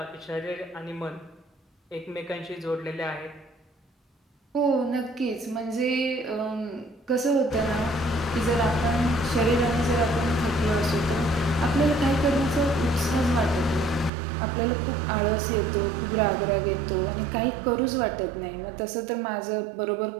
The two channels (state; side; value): drops out; left; at 14.1 s